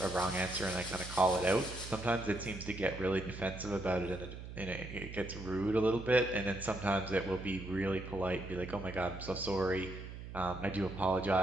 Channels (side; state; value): right; noise; hum, 11 dB below the sound